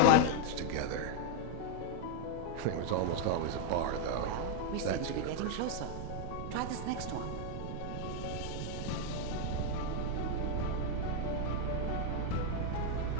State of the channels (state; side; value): different; both; correlation 0.00